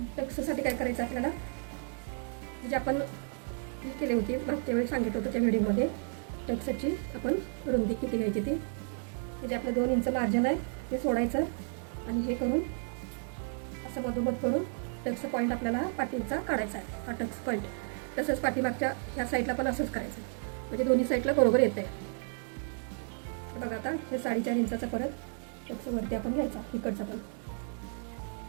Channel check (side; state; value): left; silent; 56 dB below the other